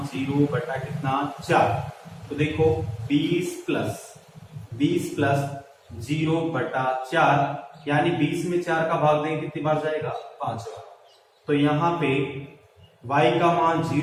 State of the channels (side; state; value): both; identical; correlation 1.00